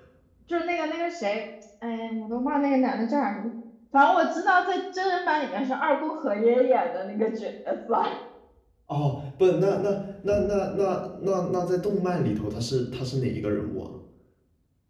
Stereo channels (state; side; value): identical; both; correlation 1.00